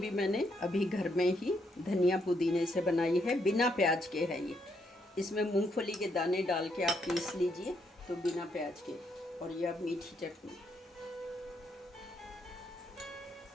मैंने अभी घर में ही धनिया पुदीने से बनाई है, बिना प्याज के है ये। इसमें मूंगफली के दाने डाल के आप पीस लीजिए तो बिना प्याज के। और ये अब मीठी चटनी,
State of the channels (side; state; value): both; normal; correlation 0.75